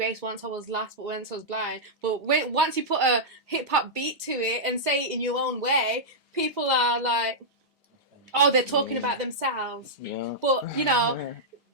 once I was lost, but once I was blind. But once you put a hip-hop beat to it and say it in your own way, people are like, oh, they're talking about themselves. Yeah. But, you know,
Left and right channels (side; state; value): both; normal; correlation -0.10